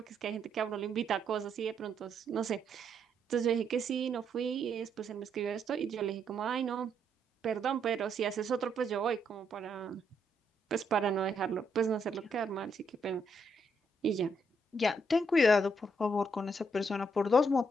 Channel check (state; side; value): normal; both; correlation 0.75